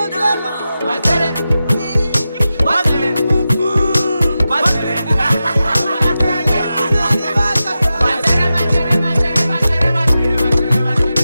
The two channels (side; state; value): both; inverted; correlation -0.92